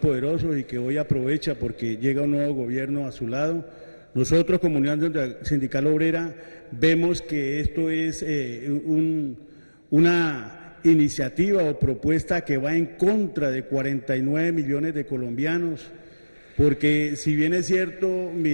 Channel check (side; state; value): both; inverted; correlation -1.00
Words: y que hoy aprovecha porque llega un nuevo gobierno a su lado. Nosotros como Unión Sindical Obrera vemos que esto es una iniciativa o propuesta que va en contra de 49 millones de colombianos, porque si bien es cierto,